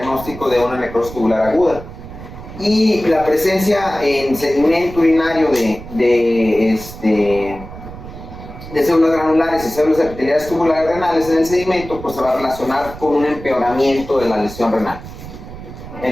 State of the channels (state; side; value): noise; right; rumble, 14 dB below the sound